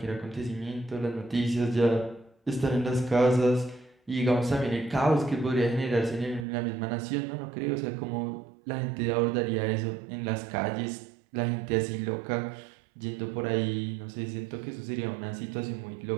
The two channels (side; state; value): left; drops out; at 6.5 s